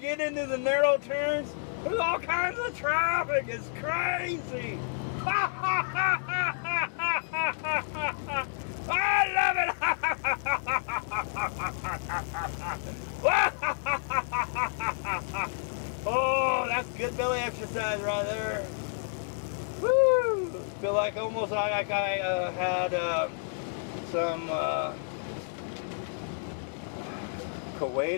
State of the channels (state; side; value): silent; right; 58 dB below the other